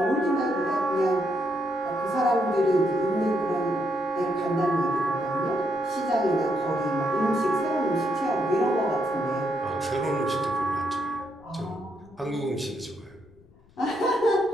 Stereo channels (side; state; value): left; noise; rumble, 28 dB below the sound